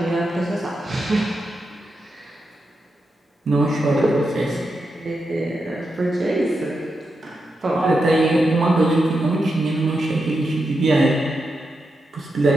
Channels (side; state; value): both; normal; correlation 0.87